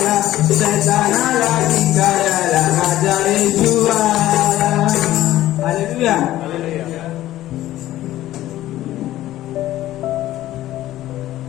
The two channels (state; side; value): quieter; right; 14.5 dB